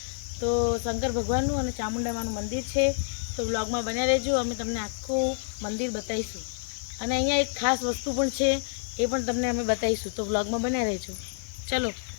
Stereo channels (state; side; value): silent; right; 59 dB below the other